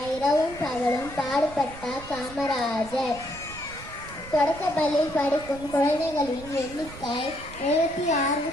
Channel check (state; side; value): noise; right; rumble, 16 dB below the sound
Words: இரவும் பகலும் பாடுபட்டார் காமராஜர். தொடக்கப்பள்ளியில் படிக்கும் குழந்தைகளின் எண்ணிக்கை